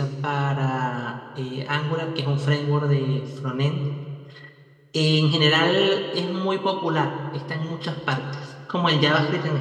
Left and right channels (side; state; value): both; identical; correlation 1.00